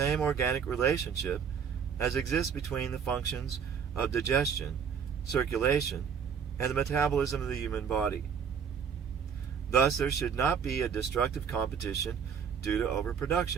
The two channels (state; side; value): quieter; left; 7.1 dB